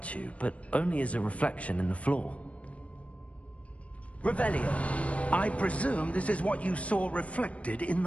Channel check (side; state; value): right; late; 0.064 ms